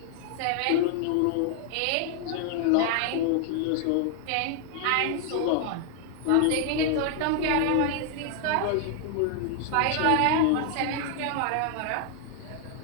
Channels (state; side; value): different; both; correlation 0.00